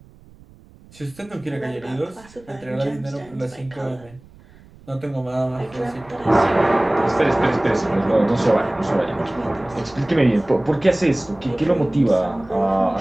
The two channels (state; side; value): noise; right; rumble, 24 dB below the sound